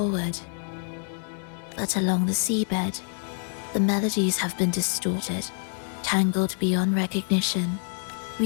But along the seabed, the melodies have been distorted, tangled beyond recognition.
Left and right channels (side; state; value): right; silent; 57 dB below the other